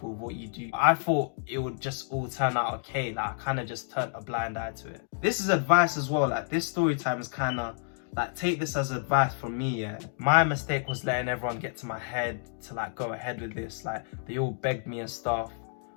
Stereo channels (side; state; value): right; silent; 58 dB below the other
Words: with what you do. I thought it would just all turn out okay. Like, I kind of just turned a blind eye to it. This is advice as well. Like, this story time is kind of like, take this as advice from me, yeah. My mistake was letting everyone get to my head to like go ahead with this. Like, they all begged me and stuff,